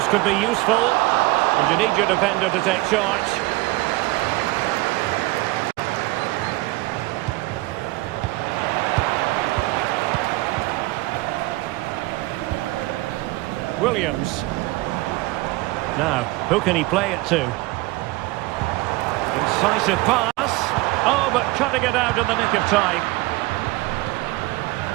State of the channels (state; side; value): quieter; left; 20.7 dB